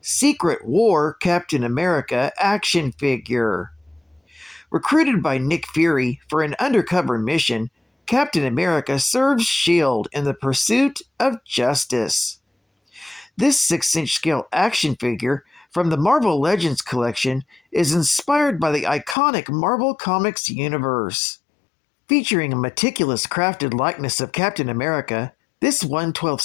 War Captain America action figure. Recruited by Nick Fury for an undercover mission, Captain America serves S.H.I.E.L.D. in the pursuit of justice. This 6-inch scale action figure from the Marvel Legends collection is inspired by the iconic Marvel Comics universe. Featuring a meticulous crafted likeness of Captain America, this 1/12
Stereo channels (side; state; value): right; drops out; at 19.2 s